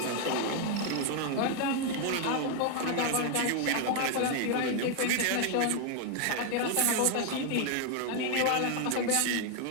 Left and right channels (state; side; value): different; both; correlation 0.01